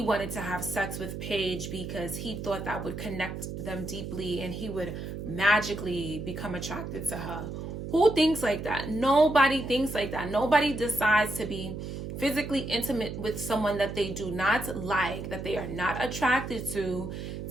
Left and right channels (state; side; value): noise; right; hum, 7 dB below the sound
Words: wanted to have sex with Paige because he thought that would connect them deeply and he would magically become attracted to her. Who thinks like that? Nobody thinks like that. Nobody decides to be physically intimate with someone that they do not like, that they are not attracted to